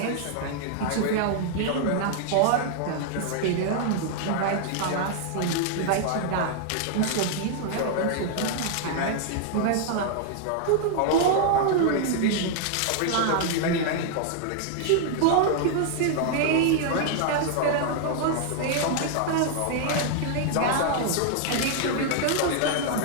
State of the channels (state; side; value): different; both; correlation 0.00